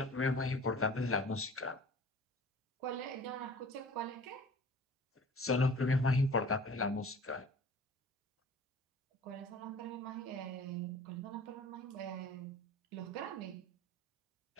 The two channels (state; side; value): normal; both; correlation 0.45